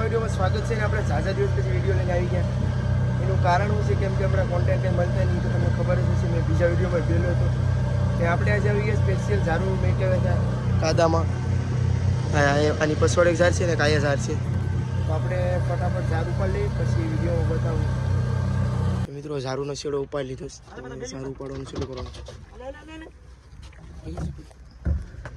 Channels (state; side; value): identical; both; correlation 1.00